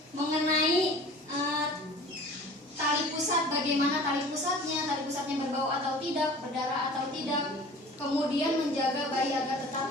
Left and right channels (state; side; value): normal; both; correlation 0.43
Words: mengenai tali pusat, bagaimana tali pusatnya berbau atau tidak, berdarah atau tidak. Kemudian menjaga bayi agar